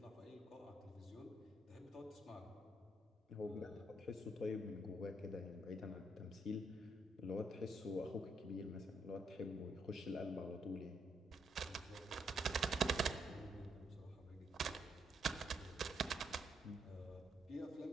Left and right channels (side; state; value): both; normal; correlation 0.76